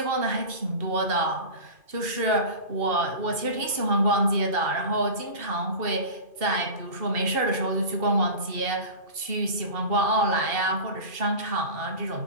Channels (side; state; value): left; late; 2.5 ms